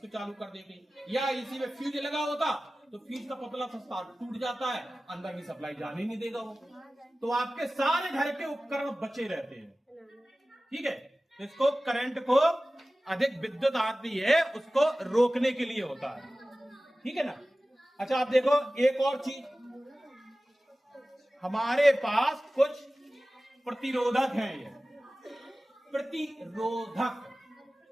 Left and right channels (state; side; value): normal; both; correlation 0.97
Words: चालू कर देती। या इसी में फ्यूज लगा होता तो फ्यूज का पतला सा तार टूट जाता है, अंदर की सप्लाई जाने नहीं देगा वो, तो आपके सारे घर के उपकरण बचे रहते हैं। ठीक है, तो इसको करंट को अधिक विद्युत आती है उसको रोकने के लिए होता है। ठीक है ना। अच्छा आप देखो एक और चीज, हमारे पास कुछ प्रतिरोधक हैं। ये प्रतिरोधक,